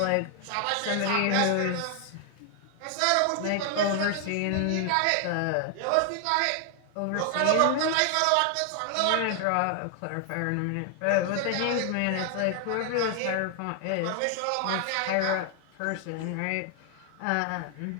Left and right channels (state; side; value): different; both; correlation 0.00